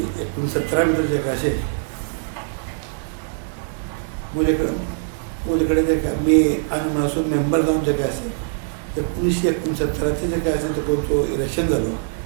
मध्ये जे काय असे मुझेकडे जे काय मी अनुमानासून मेंबर जाऊन जे काय असेल 1969 जे काय असेल ते तो इलेक्शन झालं.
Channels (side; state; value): left; silent; digital silence